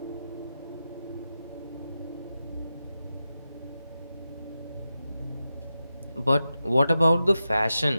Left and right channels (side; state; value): both; inverted; correlation -0.90